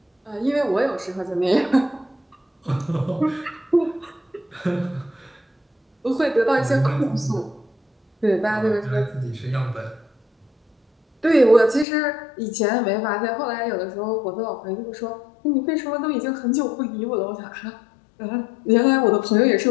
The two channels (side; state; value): right; drops out; at 11.9 s